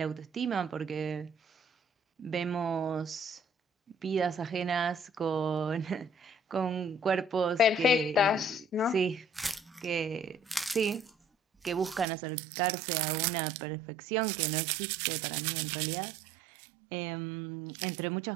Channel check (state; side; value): drops out; left; at 12.1 s